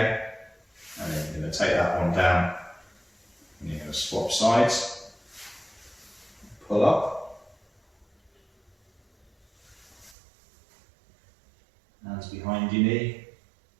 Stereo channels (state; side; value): drops out; left; at 10.2 s